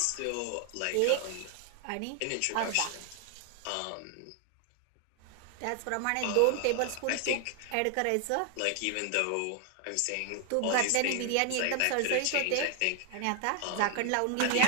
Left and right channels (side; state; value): both; different; correlation 0.00